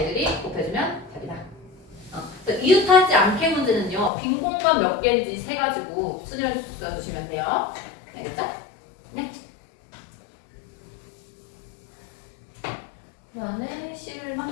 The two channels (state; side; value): drops out; right; at 4.1 s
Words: 곱해주면 답이다. 이웃하지 않게 문제는요, 빈 공간 몇 개인지 세가지고 순위를 써주시면 돼요. 알겠죠? 네. 그 다음에